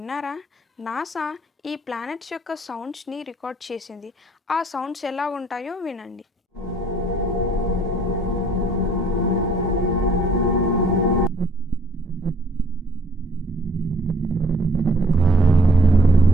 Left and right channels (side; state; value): both; normal; correlation 0.62